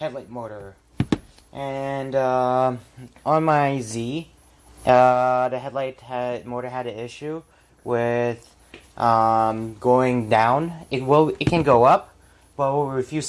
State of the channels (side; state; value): both; identical; correlation 1.00